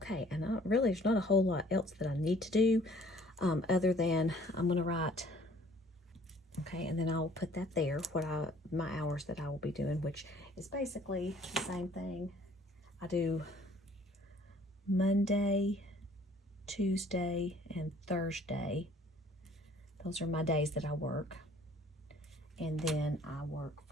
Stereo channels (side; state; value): both; normal; correlation 0.56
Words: and really there's not a whole lot else that I need to do other than I'm going to write, okay, and then I'll put that there, my hours that I will be doing, which is basically the same thing. I do Monday, Tuesday, and Thursday. Those are my days that I work. And then I work